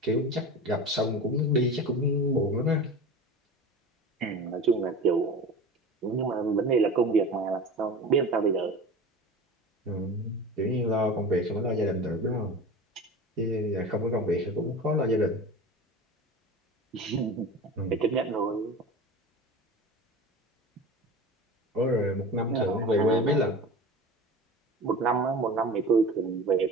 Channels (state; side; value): normal; both; correlation 0.32